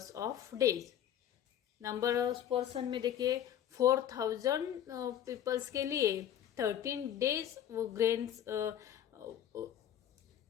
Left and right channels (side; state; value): right; quieter; 10.5 dB